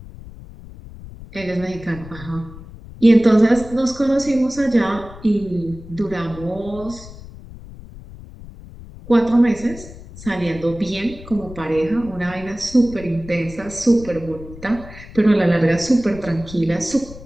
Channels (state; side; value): noise; left; rumble, 16 dB below the sound